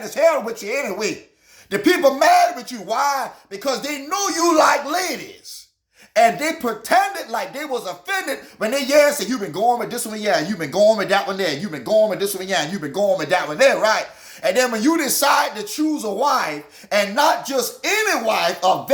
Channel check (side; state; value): both; identical; correlation 1.00